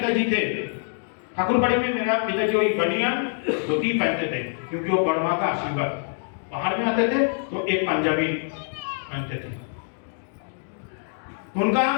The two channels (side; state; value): right; silent; 60 dB below the other